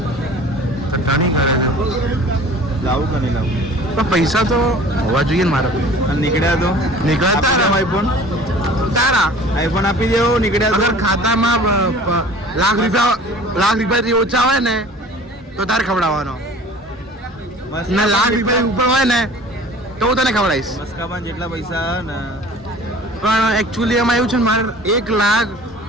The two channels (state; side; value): normal; both; correlation 0.45